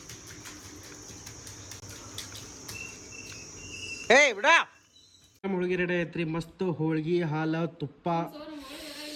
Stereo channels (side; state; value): both; identical; correlation 1.00